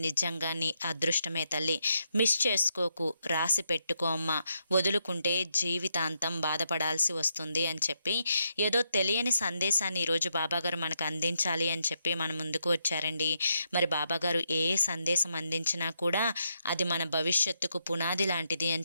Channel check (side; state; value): both; inverted; correlation -0.80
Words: నిజంగా నీ అదృష్టమే తల్లి. మిస్ చేసుకోకు, రాసి పెట్టుకో అమ్మ. వదులుకుంటే జీవితాంతం బాధపడాల్సి వస్తుంది అని చెప్పి ఏదో తెలియని సందేశాన్ని ఈరోజు బాబాగారు మనకు అందించాలి అని చెప్పి మన ముందుకు వచ్చారండి. మరి బాబాగారు ఏ సందేశం అందించినా కూడా అది మన భవిష్యత్తుకు పునాది లాంటిది